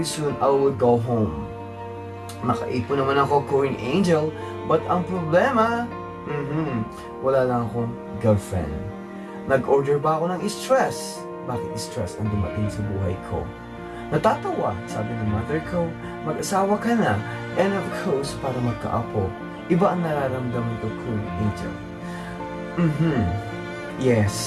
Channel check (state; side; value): identical; both; correlation 1.00